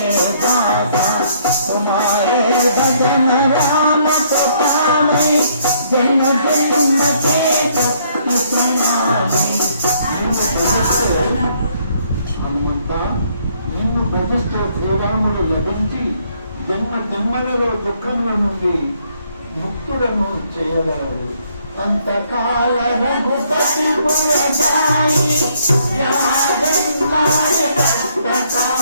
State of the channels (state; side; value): inverted; both; correlation -0.67